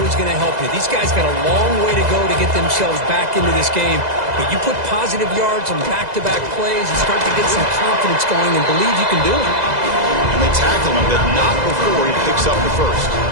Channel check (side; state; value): left; late; 2.0 ms